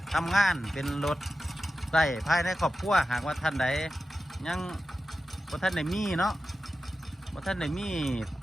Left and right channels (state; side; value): normal; both; correlation 0.93